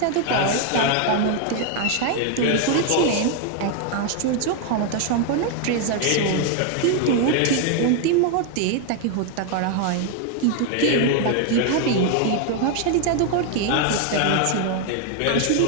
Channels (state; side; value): different; both; correlation 0.01